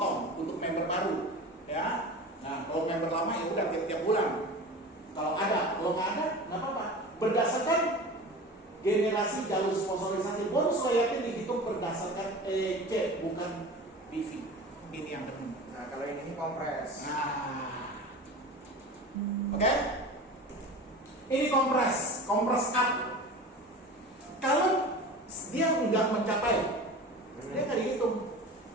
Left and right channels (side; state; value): both; normal; correlation 0.34